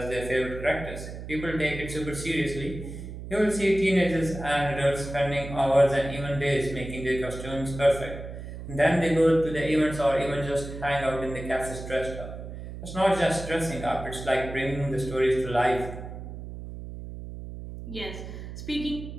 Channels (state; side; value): noise; right; hum, 10 dB below the sound